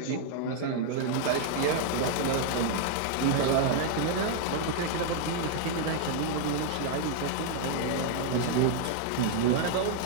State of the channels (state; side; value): different; both; correlation 0.00